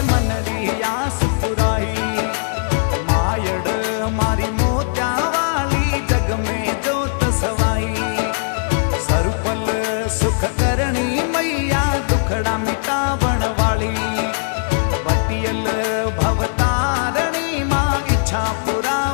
मनरी आस पुराई मायड़ मारी मोत्या वाली जग में जोत सवाई सरुपल सुख करनी मैया दुखड़ा मिटावण वाली पटियल भवतारणी माँ इच्छा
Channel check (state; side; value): silent; right; digital silence